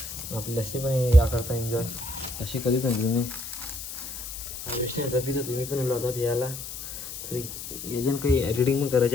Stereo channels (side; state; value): left; noise; hiss, 9 dB below the sound